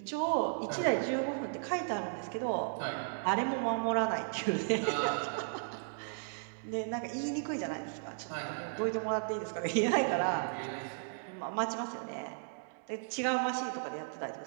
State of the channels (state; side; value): silent; left; digital silence